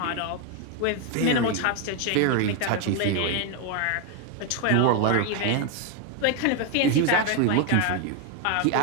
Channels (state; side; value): different; both; correlation 0.01